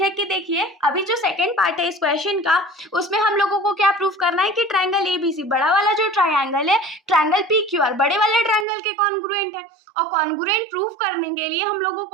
है कि देखिए अभी जो सेकंड पार्ट है इस क्वेश्चन का, उसमें हम लोगों को क्या प्रूव करना है कि ट्रायंगल ABC, बड़ा वाला जो ट्रायंगल है ट्रायंगल PQR, बड़े वाले ट्रायंगल के कॉन्ग्रुएंट है। और कॉन्ग्रुएंट प्रूव करने के लिए हम लोगों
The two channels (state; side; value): drops out; left; at 8.7 s